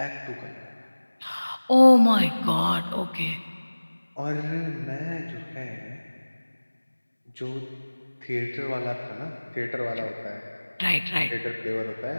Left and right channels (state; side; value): inverted; both; correlation -1.00